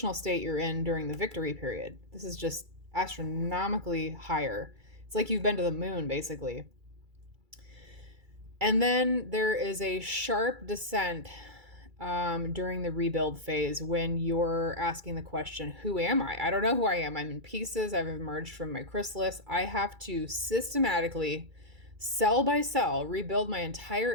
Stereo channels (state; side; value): late; left; 2.3 ms